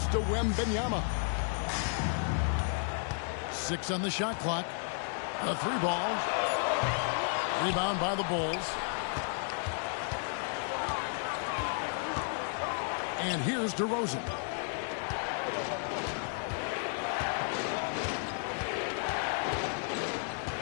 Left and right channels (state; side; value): silent; right; 56 dB below the other